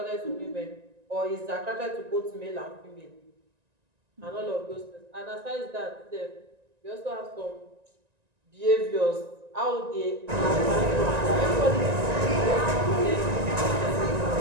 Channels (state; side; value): late; left; 1.9 ms